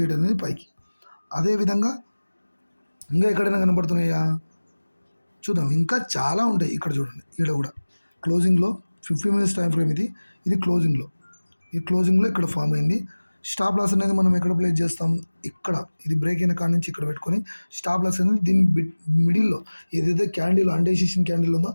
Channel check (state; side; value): inverted; both; correlation -1.00